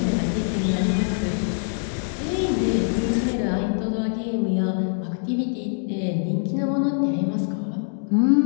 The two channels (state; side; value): silent; right; digital silence